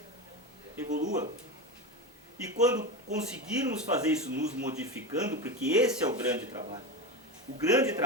evolua. E quando conseguirmos fazer isso nos modificando, porque esse é o grande trabalho. O grande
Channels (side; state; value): both; normal; correlation 0.21